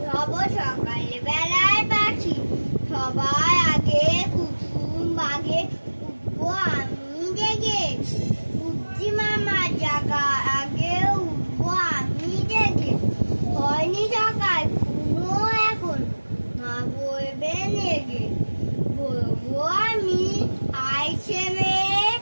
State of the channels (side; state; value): both; inverted; correlation -1.00